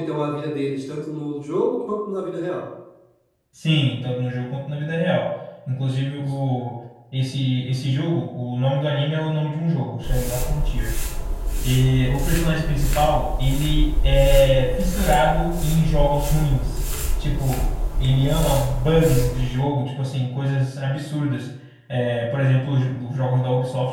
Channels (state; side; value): identical; both; correlation 1.00